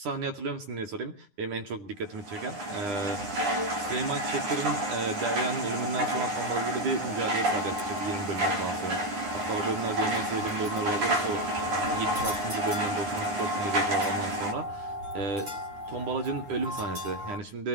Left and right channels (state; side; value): late; left; 9.8 ms